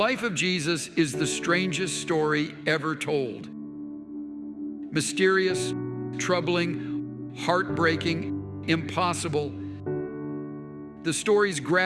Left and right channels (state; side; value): identical; both; correlation 1.00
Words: of Jesus is the strangest story ever told. Mysterious, troubling, heartbreaking, impossible. The stories